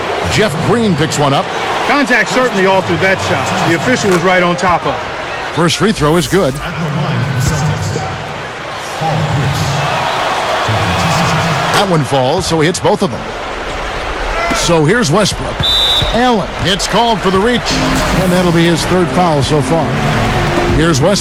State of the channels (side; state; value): both; identical; correlation 1.00